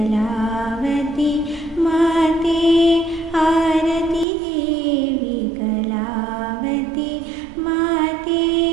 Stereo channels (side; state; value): left; drops out; at 4.2 s